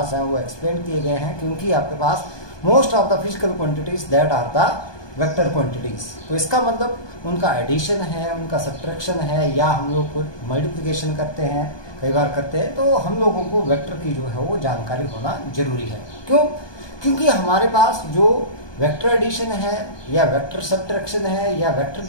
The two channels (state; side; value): late; right; 1.2 ms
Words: हैं वो एक्सप्लेन किए गए हैं, क्योंकि आपके पास most of the physical quantities that are the vector quantities. तो इसका मतलब उनका एडिशन है, उनका सब्ट्रैक्शन है, या हम लोग को मल्टीप्लिकेशन करते हैं, कई बार करते हैं, तो हम लोगों को वेक्टर की जो है वो जानकारी होना जरूरी है. क्यों? क्योंकि हमारे पास जो वेक्टर एडिशन है या वेक्टर सब्ट्रैक्शन है या वेक्टर